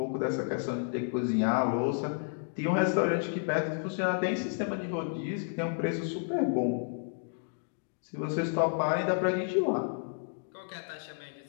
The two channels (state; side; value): silent; right; digital silence